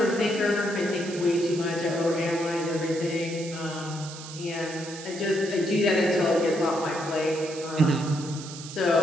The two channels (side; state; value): right; noise; hiss, 13 dB below the sound